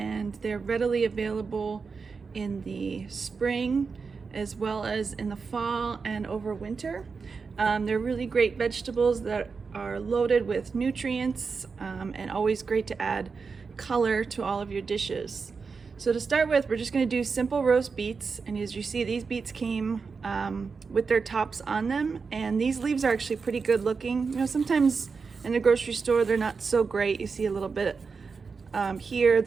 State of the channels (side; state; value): left; quieter; 5.0 dB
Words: they're readily available in the spring as well as in the fall and over winter. They're really great vegetables that are loaded with nutrients and always great to add color to all of your dishes. So to start with, we're just going to do simple roast beets, and as you see, these beets came with their tops on them, and these leaves are actually pretty good looking. You know, sometimes in the grocery store they're not so great. You see a little bit here